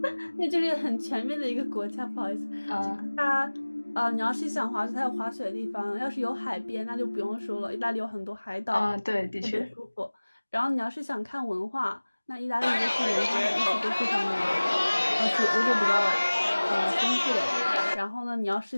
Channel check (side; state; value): both; inverted; correlation -1.00